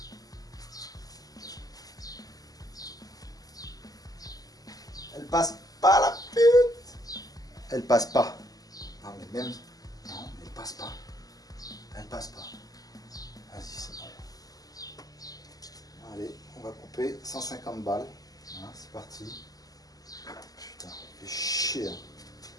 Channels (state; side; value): late; right; 0.18 ms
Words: Elle passe pas la pute. Elle passe pas. Non mais même. Non mais elle passe pas. Elle passe pas. Vas-y c'est bon. Allez, on va couper 150 balles. Voilà, c'est parti. Putain, fait chier. Hein.